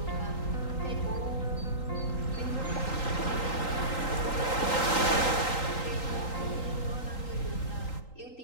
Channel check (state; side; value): late; right; 3.8 ms